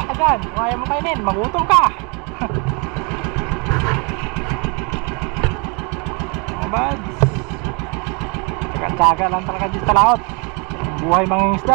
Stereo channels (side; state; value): left; quieter; 32.3 dB